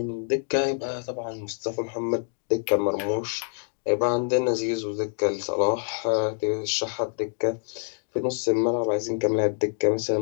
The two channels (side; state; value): right; silent; 61 dB below the other